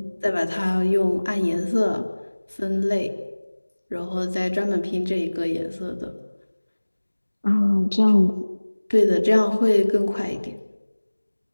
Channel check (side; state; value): both; inverted; correlation -1.00